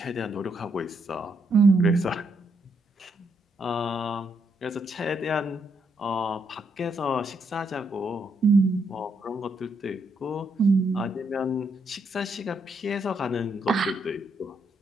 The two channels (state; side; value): normal; both; correlation 0.76